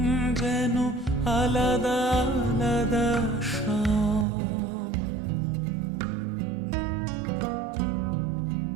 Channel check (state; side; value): drops out; left; at 4.2 s